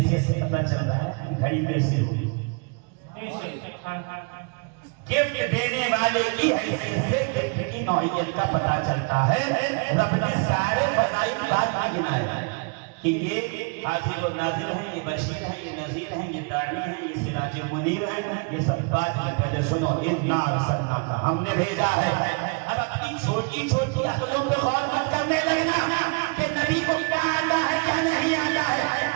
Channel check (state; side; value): quieter; left; 34.0 dB